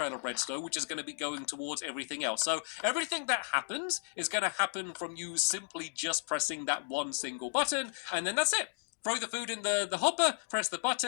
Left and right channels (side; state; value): right; silent; digital silence